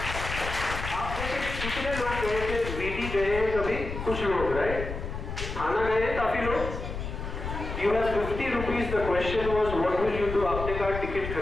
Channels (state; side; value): noise; left; rumble, 6 dB below the sound